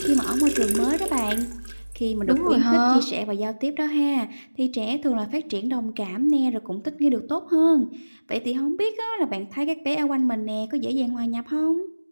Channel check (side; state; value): both; inverted; correlation -1.00